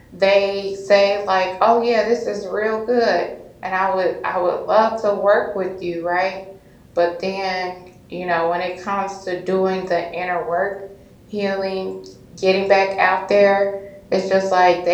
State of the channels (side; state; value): both; identical; correlation 1.00